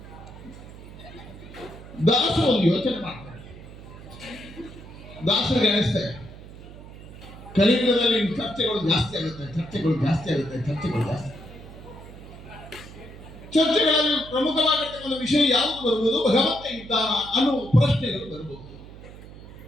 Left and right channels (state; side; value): noise; right; hum, 16 dB below the sound